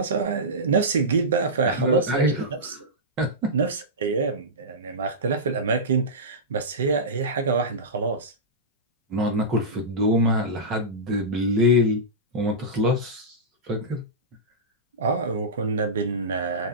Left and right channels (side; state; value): both; normal; correlation -0.15